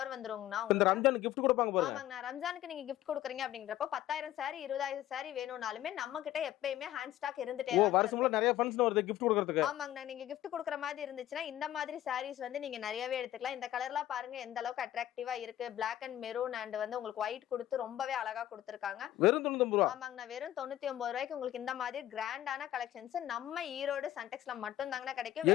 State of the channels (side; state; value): right; quieter; 13.2 dB